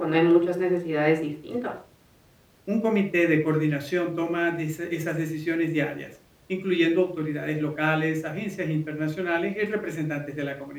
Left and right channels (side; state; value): both; identical; correlation 1.00